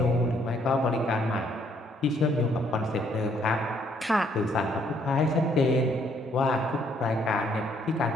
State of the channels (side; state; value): both; normal; correlation 0.68